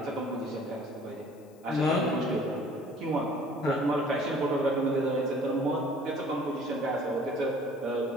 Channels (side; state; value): left; noise; hiss, 30 dB below the sound